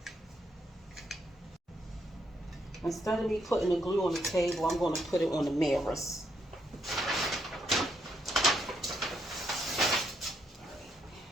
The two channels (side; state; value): both; normal; correlation 0.76